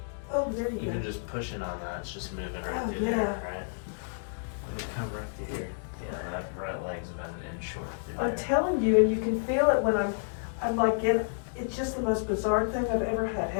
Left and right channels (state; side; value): silent; right; digital silence